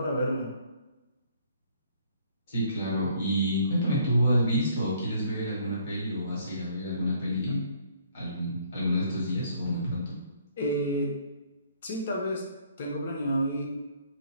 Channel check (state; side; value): inverted; both; correlation -0.62